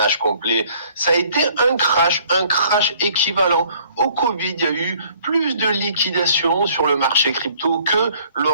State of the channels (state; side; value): inverted; both; correlation -0.59